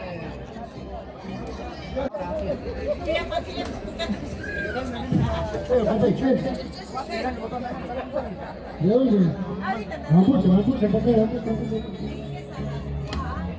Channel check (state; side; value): identical; both; correlation 1.00